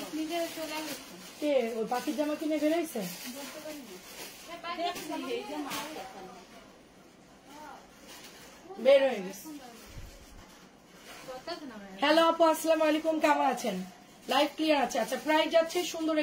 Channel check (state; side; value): identical; both; correlation 1.00